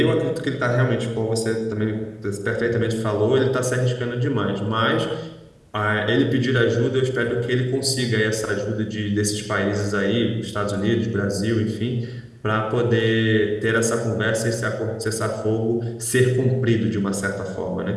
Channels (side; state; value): both; identical; correlation 1.00